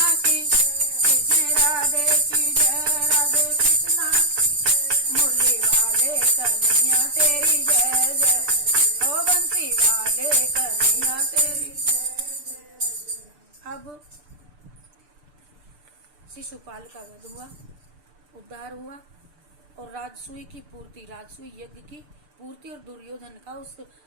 की, कृष्ण राधे की जय, राधे कृष्णा की। मुरली वाले कन्हैया तेरी जय जय, ओ बंसी वाले कन्हैया तेरी जय। अब शिशुपाल का वध हुआ, उद्धार हुआ और राजसूय की पूर्ति, राजसूय यज्ञ की पूर्ति और दुर्योधन का उस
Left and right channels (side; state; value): left; late; 6.8 ms